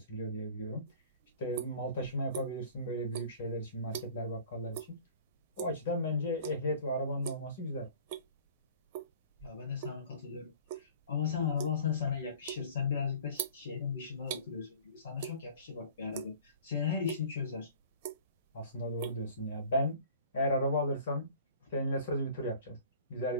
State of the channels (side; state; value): both; inverted; correlation -0.47